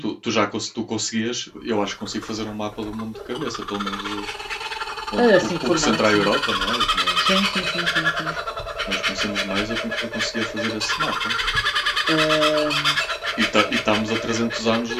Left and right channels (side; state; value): both; identical; correlation 1.00